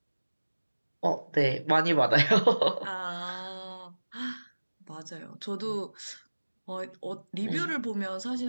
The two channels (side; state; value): both; inverted; correlation -1.00